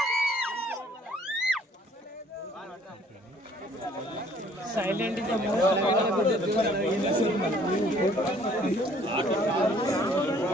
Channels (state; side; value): normal; both; correlation 0.59